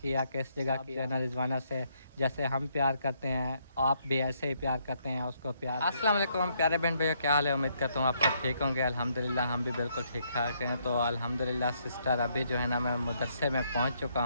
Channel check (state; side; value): inverted; both; correlation -0.73